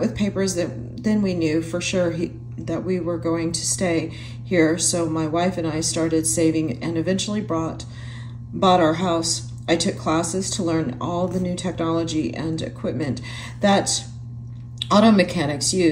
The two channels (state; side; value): identical; both; correlation 1.00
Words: papers, then we knew for sure that we were going to stay here, so my wife and I started saving and eventually bought our house. I took classes to learn all the new technology and equipment that auto mechanics